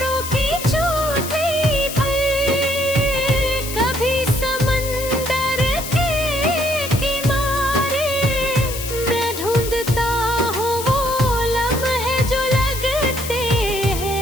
की चोटी पर, कभी समंदर के किनारे, मैं ढूंढता हूँ वो लम्हे जो लगते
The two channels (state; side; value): noise; left; hiss, 8 dB below the sound